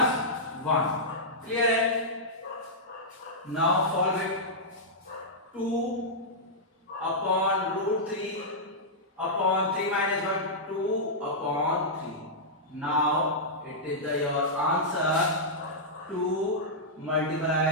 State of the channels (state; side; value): normal; both; correlation -0.10